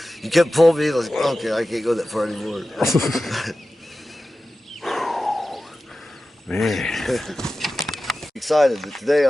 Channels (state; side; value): normal; both; correlation 0.94